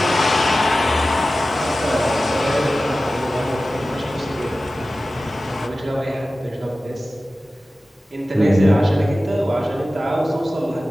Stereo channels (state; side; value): normal; both; correlation 0.95